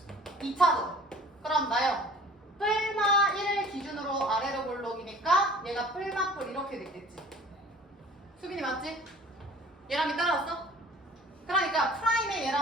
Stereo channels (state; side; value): normal; both; correlation 0.47